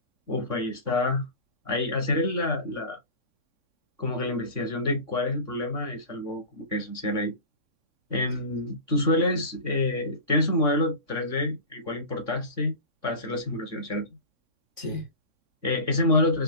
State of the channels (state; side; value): late; left; 3.6 ms